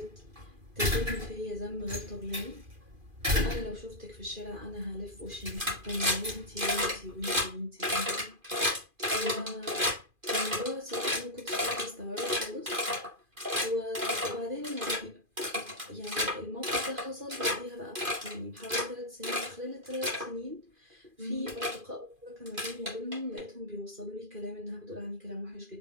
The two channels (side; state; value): left; late; 2.4 ms